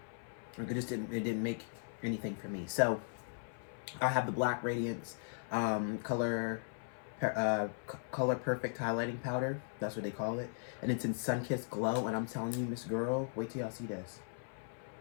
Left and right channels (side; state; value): right; silent; 53 dB below the other